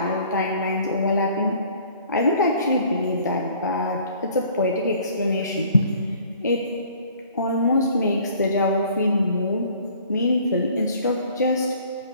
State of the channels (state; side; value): inverted; both; correlation -0.54